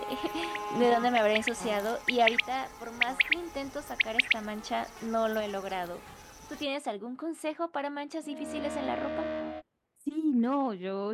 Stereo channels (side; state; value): both; identical; correlation 1.00